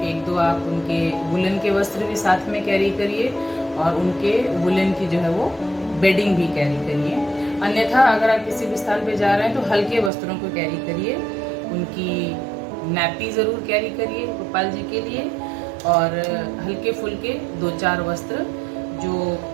एक दो आप उनके वुलन के वस्त्र भी साथ में कैरी करिए, और उनके वुलन की जो है वो बेडिंग भी कैरी करिए। अन्यथा अगर आप किसी भी स्थान पे जा रहे हैं तो हल्के वस्त्रों को कैरी करिए, उनकी नैपी ज़रूर कैरी करिए गोपाल जी के लिए, और हल्के फुल्के 2-4 वस्त्र जो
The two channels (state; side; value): drops out; left; at 10.1 s